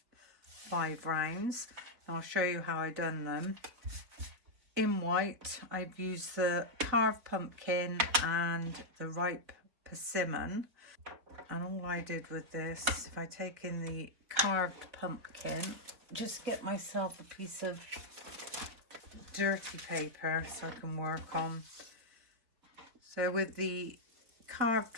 rounds. I'll show you how I done them. In white, I've used the carved pumpkin and the ripe persimmon. And all I did with this is, if I take in the carved pumpkin, just get myself a piece of dirty paper so I can work on. So with the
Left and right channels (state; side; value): late; left; 3.9 ms